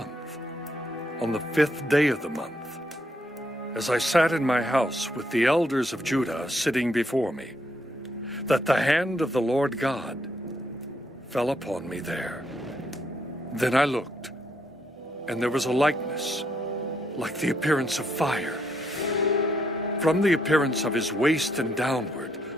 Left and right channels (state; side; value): normal; both; correlation 0.75